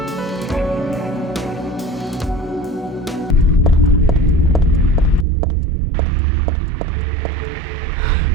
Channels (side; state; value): left; drops out; at 5.2 s